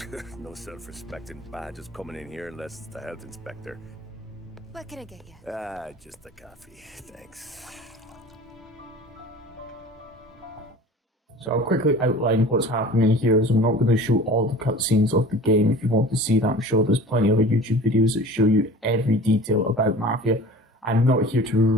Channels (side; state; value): both; normal; correlation 0.41